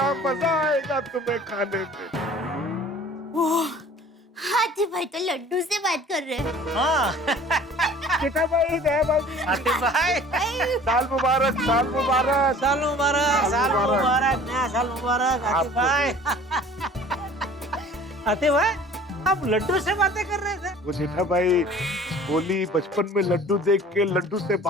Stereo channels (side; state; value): both; normal; correlation 0.48